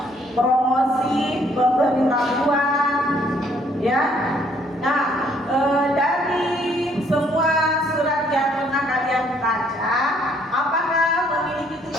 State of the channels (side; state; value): both; normal; correlation 0.65